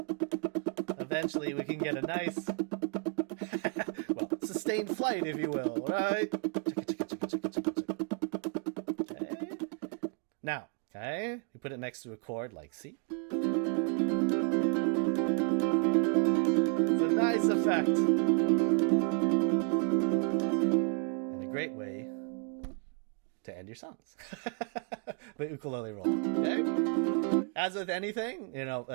eventually we can get a nice, sustained flight, if you will, right? Okay. Now, okay, we put it next to a chord like C. It's a nice effect. And a great way to end your songs. The ukulele roll. Okay? As with anything,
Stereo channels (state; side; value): quieter; left; 39.7 dB